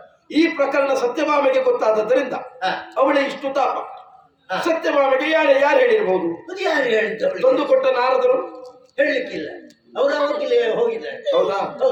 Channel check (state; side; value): identical; both; correlation 1.00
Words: ಈ ಪ್ರಕರಣ ಸತ್ಯಭಾಮೆಗೆ ಗೊತ್ತಾದದ್ದರಿಂದ ಅವಳೇ ಇಷ್ಟು ತಾಪ. ಸತ್ಯಭಾಮೆಗೆ ಯಾರು ಹೇಳಿರ್ಬಹುದು? ಅದು ಯಾರು ಹೇಳಿದ್ದವಳು? ತಂದು ಕೊಟ್ಟ ನಾರದರು ಹೇಳಲಿಕ್ಕಿಲ್ಲ, ಅವರು ಅವತ್ತಿಗೆ ಹೋಗಿದ್ದಾರೆ. ಹೌದಾ?